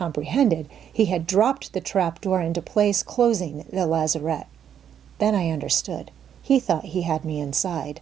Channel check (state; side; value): quieter; left; 9.0 dB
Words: he had dropped the trap door into place, closing the lazarette. Then I understood. He thought he had me inside.